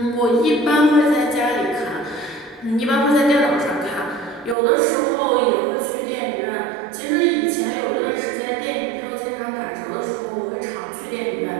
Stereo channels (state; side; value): drops out; left; at 4.5 s